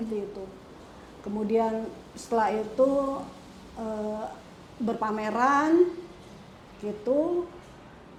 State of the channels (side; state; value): both; identical; correlation 1.00